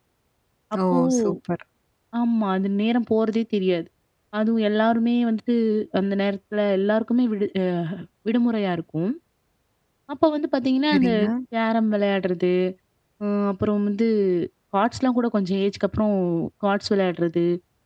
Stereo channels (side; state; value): both; identical; correlation 1.00